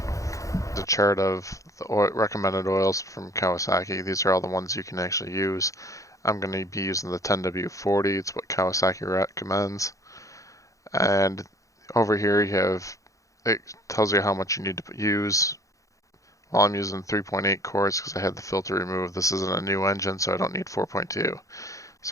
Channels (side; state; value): right; late; 0.16 ms